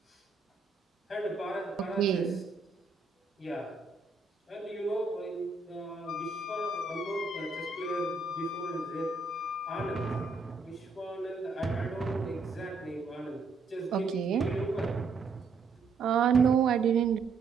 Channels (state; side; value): quieter; left; 4.5 dB